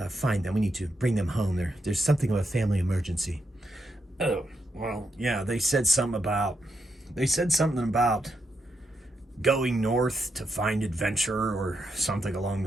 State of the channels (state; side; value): normal; both; correlation 0.82